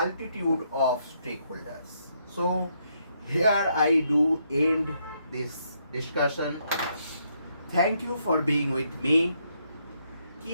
of stakeholders. So, here I do end this discussion. Thank you for being with me.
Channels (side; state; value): both; inverted; correlation -0.75